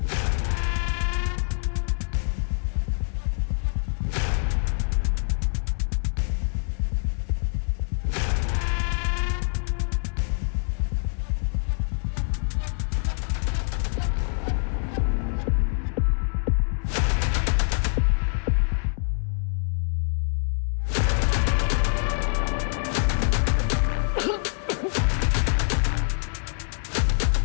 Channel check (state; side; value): silent; right; 62 dB below the other